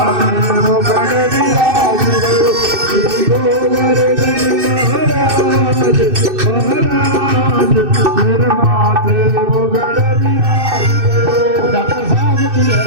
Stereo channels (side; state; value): left; late; 2.6 ms